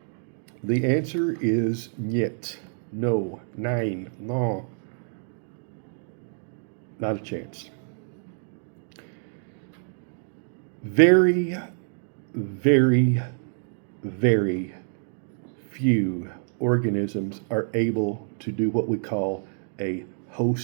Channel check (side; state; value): left; silent; 60 dB below the other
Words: The answer is niet. No. Nein. No. Not a chance. Very, very, very few organisms are able to do what we call a